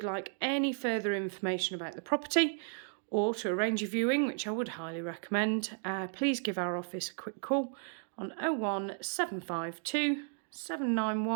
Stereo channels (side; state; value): left; silent; 55 dB below the other